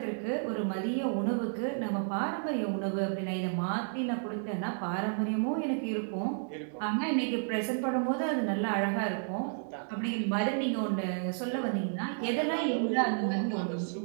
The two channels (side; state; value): left; silent; digital silence